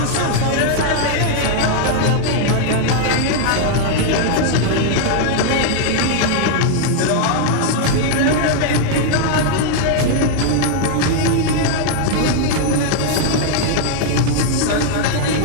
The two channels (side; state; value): both; different; correlation 0.00